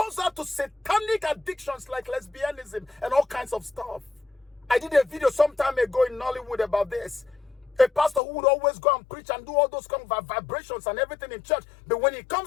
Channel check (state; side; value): drops out; right; at 8.2 s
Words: her to satanic addictions like lesbianism and all kinds of stuff. I did a video some time ago in Nollywood about this. A pastor who would always go and preach and do all those kind of vibrations and everything in church. But when he